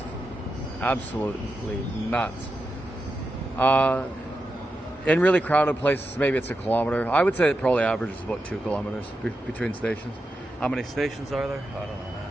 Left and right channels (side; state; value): both; normal; correlation 0.88